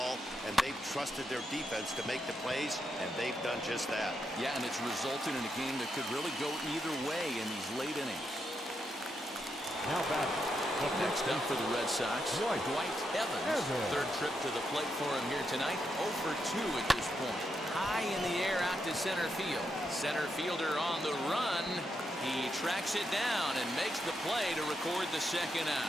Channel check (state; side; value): normal; both; correlation 0.82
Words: and they've trusted their defense to make the plays, and they've done just that. Yeah, and it's resulted in a game that could really go either way in these late innings. Now batting. Next up for the Red Sox, Dwight Evans. 3rd trip to the plate for him here tonight. 0 for 2 at this point. High in the air out to center field. Center fielder on the run. He tracks it down and makes the play to record the 2nd